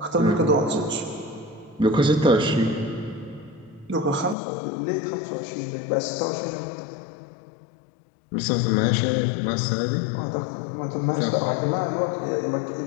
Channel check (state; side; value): drops out; right; at 4.4 s